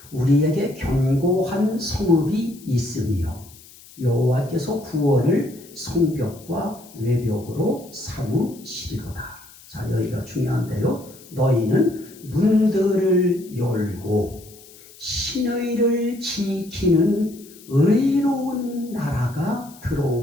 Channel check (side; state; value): left; noise; hiss, 22 dB below the sound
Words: 우리에게 견고한 성읍이 있으며 여호와께서 구원을 성벽과 외벽으로 삼으시리로다. 자, 여기가 중요한데요. 너희는 문들을 열고 신의를 지키는 의로운 나라가